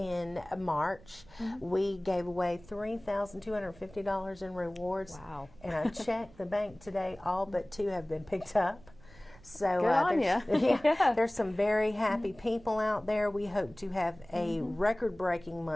March. We gave away $3,250 in rewards. Wow. And I checked the bank today. All but 2 have been picked up. So there's some very happy people out there. We hope to have a record-breaking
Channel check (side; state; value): right; noise; rumble, 23 dB below the sound